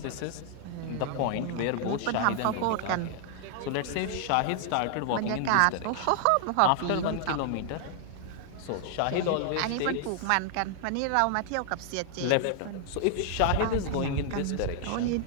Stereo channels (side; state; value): both; different; correlation 0.00